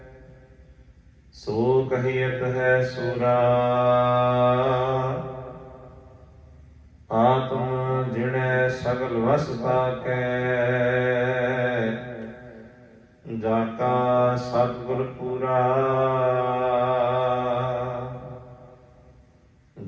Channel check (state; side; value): identical; both; correlation 1.00